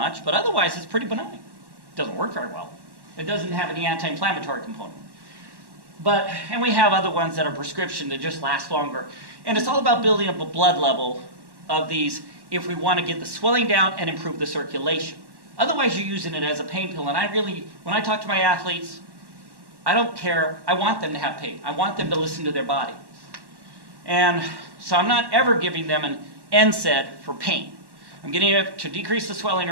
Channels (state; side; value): late; left; 1.1 ms